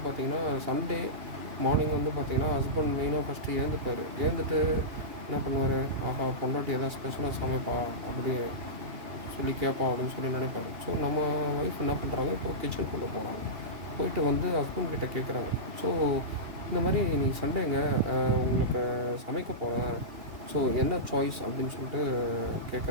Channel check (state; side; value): late; left; 2.7 ms